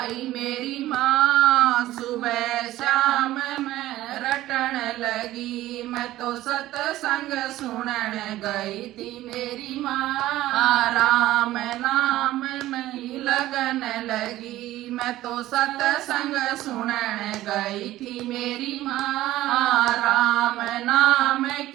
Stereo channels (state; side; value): quieter; left; 15.4 dB